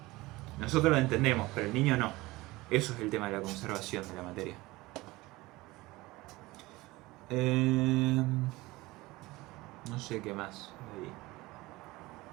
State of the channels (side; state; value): left; quieter; 20.3 dB